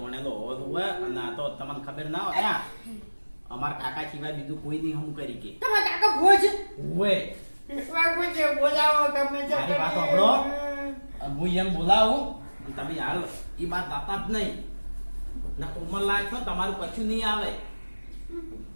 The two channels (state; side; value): inverted; both; correlation -1.00